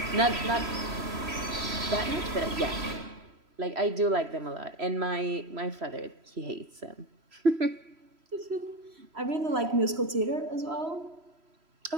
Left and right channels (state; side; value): late; left; 3.1 ms